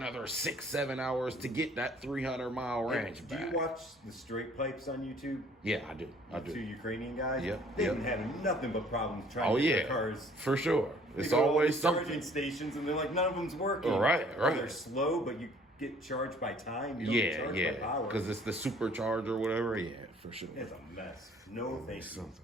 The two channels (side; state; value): both; normal; correlation 0.56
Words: 6-7 hours to get that 300-mile range Do back. you watch the straight pipes on YouTube? Yeah, I do. I Two do. Ukrainian guys. Yep, They've yep. been having nothing but problems trying Oh to get yeah, their cars. for sure. They It's go to all always these charging something. stations, and they're like, none of them's working. Right, Or right. they're slow, but you get charged by time. You don't get Yeah, charged by yeah. power. Because it's the supercharger or whatever. Yeah, for sure. It's a mess. No, thank you.